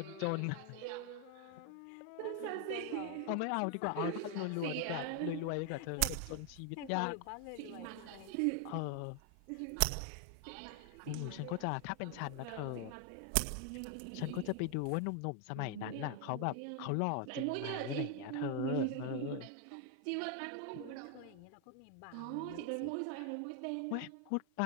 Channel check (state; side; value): different; both; correlation 0.00